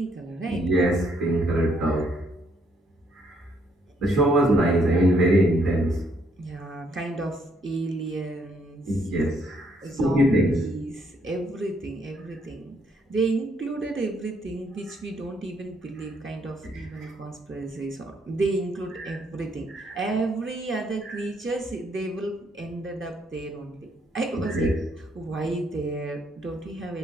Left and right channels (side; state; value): both; normal; correlation 0.70